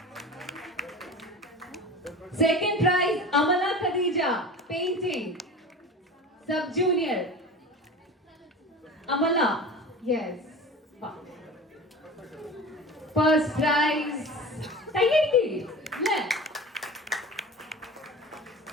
Second prize, Amala Khadija, painting, sub-junior. Amala, yes. First prize, Tayyaki.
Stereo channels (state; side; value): normal; both; correlation 0.35